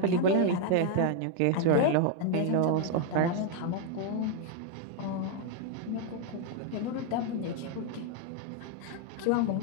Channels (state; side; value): different; both; correlation 0.00